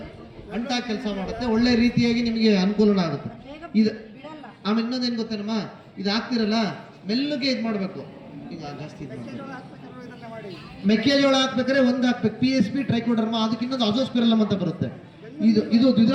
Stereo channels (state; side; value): identical; both; correlation 1.00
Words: ಅಂಟಾಗಿ ಕೆಲಸ ಮಾಡುತ್ತೆ, ಒಳ್ಳೆ ರೀತಿಯಾಗಿ ನಿಮಗೆ ಅನುಕೂಲ ಆಗುತ್ತೆ. ಇದು ಆಮೇಲೆ ಇನ್ನೊಂದೇನು ಗೊತ್ತೇನಮ್ಮ, ಇದು ಹಾಕ್ತಿರಲ್ಲ, ಮೆಲ್ಲಗೆ ಇದು ಮಾಡಬೇಕು. ಈಗ ಜಾಸ್ತಿ ಮೆಕ್ಕೆಜೋಳ ಹಾಕ್ಬೇಕಾದ್ರೆ ಒಂದು ಹಾಕ್ಬೇಕು, PSP ಟ್ರೈಕೋಡರ್ಮಾ, ಅದಕ್ಕೆ ಇನ್ನೊಂದು ಅಜೋಸ್ಪಿರಲಮ್ ಅಂತ ಬರುತ್ತೆ. ಇದು